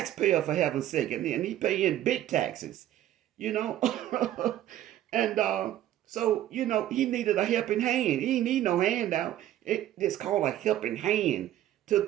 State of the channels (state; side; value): quieter; left; 12.8 dB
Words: for heaven's sake, and he paying big taxes. You know, and so he needed a helping hand. He need no handout. It's called a helping hand